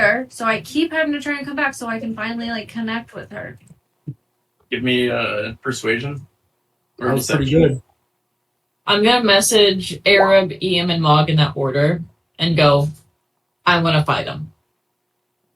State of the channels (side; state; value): both; identical; correlation 1.00